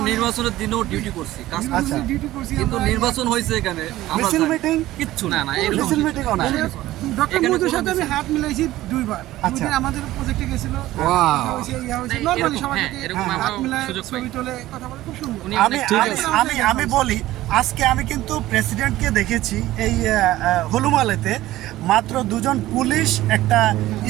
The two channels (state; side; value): quieter; left; 15.8 dB